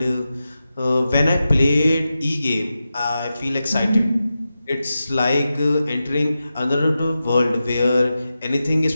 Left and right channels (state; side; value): inverted; both; correlation -0.92